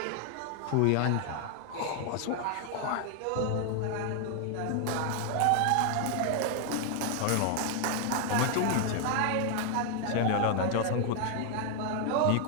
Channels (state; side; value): different; both; correlation 0.00